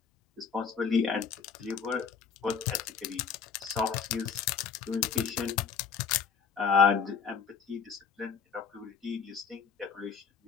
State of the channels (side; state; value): right; quieter; 6.3 dB